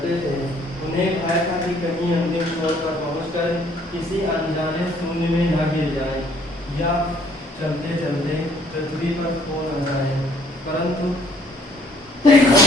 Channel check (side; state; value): both; normal; correlation 0.62